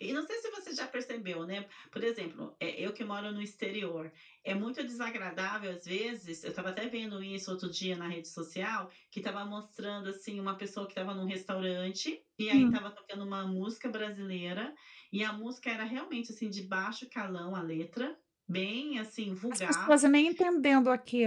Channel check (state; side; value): identical; both; correlation 1.00